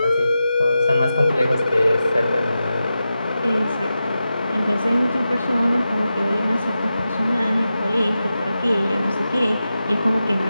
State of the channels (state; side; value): inverted; both; correlation -0.91